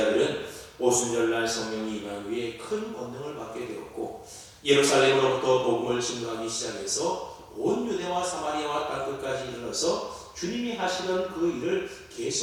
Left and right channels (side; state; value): both; identical; correlation 1.00